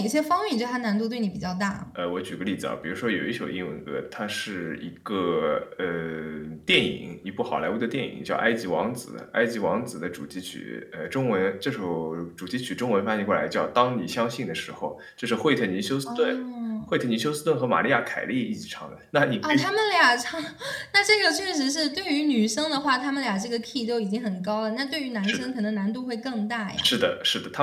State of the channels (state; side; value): identical; both; correlation 1.00